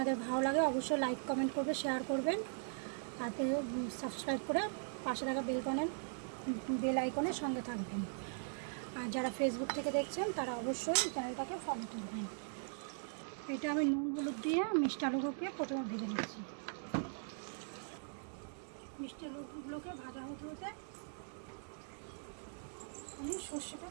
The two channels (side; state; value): left; silent; digital silence